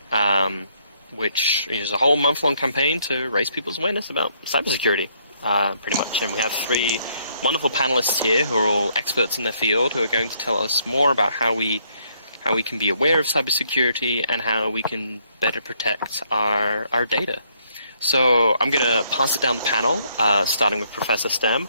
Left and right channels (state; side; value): inverted; both; correlation -0.70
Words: which is a whole month-long campaign to raise people's awareness about cybersecurity, pretty much. And we have three wonderful panelists here who are all experts in their field who are going to tell us more about how we can be aware of cybersecurity and how we can better protect our data. So I'm going to pass it down the panel, starting with Professor Stem.